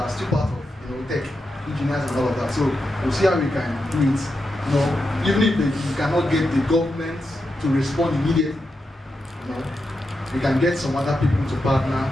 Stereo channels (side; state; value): both; normal; correlation 0.87